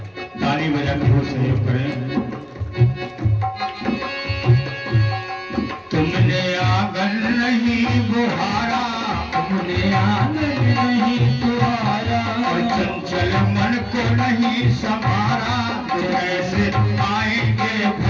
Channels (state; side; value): identical; both; correlation 1.00